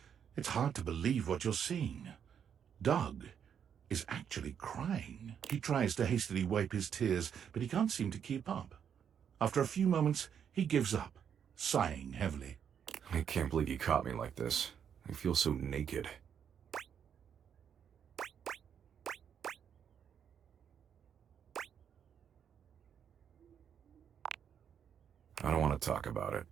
It's hard to believe what you're seeing. Doug is actually crying. He tries to hastily wipe his tears, but he can't seem to keep up. After a few moments, he gives up, sighing heavily. I can't believe you caught me like this. I feel so naked. want to talk about it.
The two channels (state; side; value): quieter; left; 8.1 dB